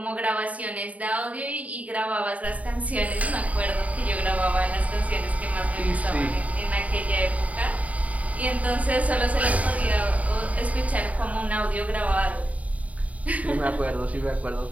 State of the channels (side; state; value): left; late; 0.069 ms